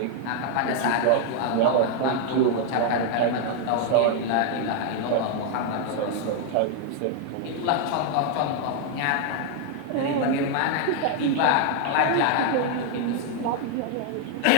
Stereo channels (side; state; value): both; different; correlation 0.00